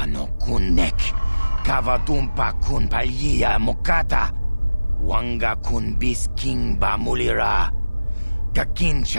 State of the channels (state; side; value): inverted; both; correlation -0.99